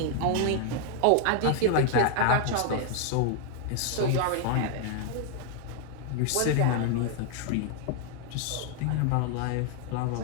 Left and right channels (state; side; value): different; both; correlation 0.00